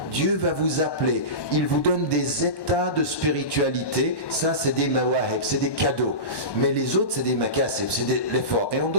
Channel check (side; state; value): right; late; 1.1 ms